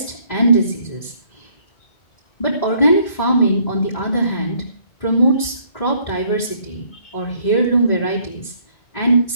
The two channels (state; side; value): late; right; 2.0 ms